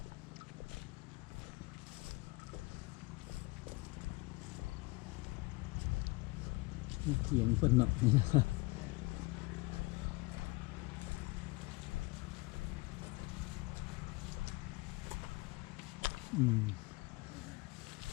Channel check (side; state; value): right; quieter; 24.3 dB